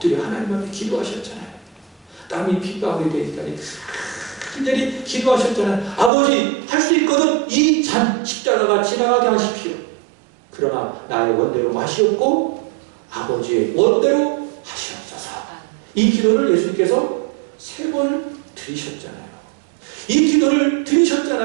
하나님 앞에 기도하셨잖아요. 땀이 핏방울이 되니까 간절히 기도하셨잖아요. 아버지, 할 수 있거든 이 잔 십자가가 지나가게 하십시오. 그러나 나의 원대로 마시옵고 아버지의 원대로 하시옵소서. 이 기도를 예수님께서 3번 드리셨잖아요. 이 기도를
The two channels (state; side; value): drops out; left; at 6.1 s